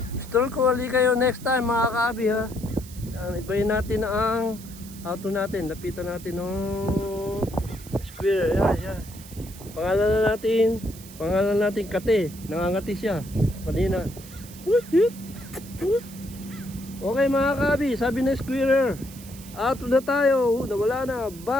Stroll ko ulit kayo next time mga kahabi ha. Ibayin natin ang auto natin. Lapitan natin ng square. Yan. Pangalan natin Kate. Nangangati siya. Kanina. Okay mga kabi, sabi na squirrel, auto na tayo, nawala na,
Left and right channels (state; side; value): noise; right; hiss, 18 dB below the sound